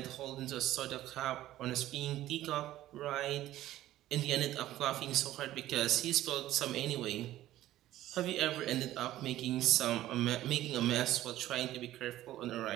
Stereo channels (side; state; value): left; quieter; 14.4 dB